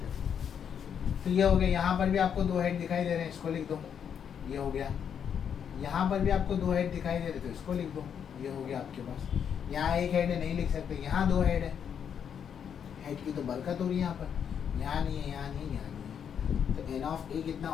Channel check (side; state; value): right; quieter; 8.0 dB